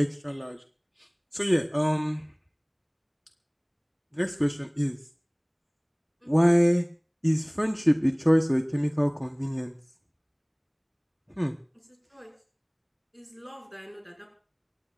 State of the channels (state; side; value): identical; both; correlation 1.00